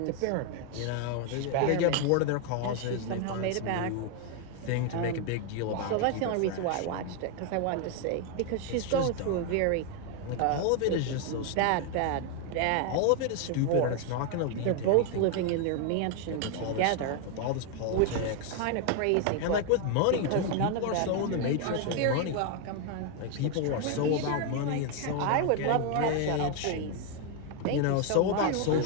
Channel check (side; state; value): both; different; correlation 0.01